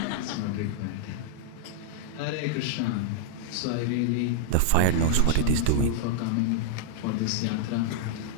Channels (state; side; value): different; both; correlation -0.01